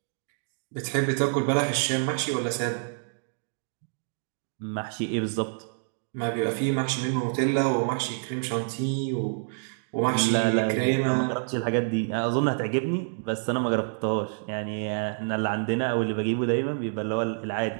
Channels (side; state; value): left; silent; digital silence